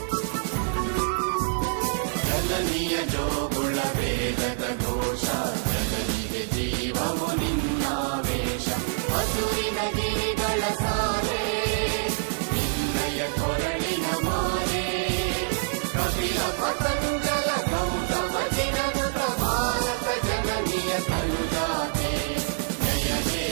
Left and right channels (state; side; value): silent; left; digital silence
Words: ಜನನಿಯ ಜೋಗುಳ ವೇದದ ಘೋಷ ಜನನಿಗೆ ಜೀವವು ನಿನ್ನಾವೇಶ ಹಸುರಿನ ಗಿರಿಗಳ ಸಾಲೆ ನಿನ್ನಯ ಕೊರಳಿನ ಮಾಲೆ ಕಪಿಲ ಪತಂಜಲ ಗೌತಮ ಜಿನನುತ ಭಾರತ ಜನನಿಯ ತನುಜಾತೆ ಜಯ ಹೇ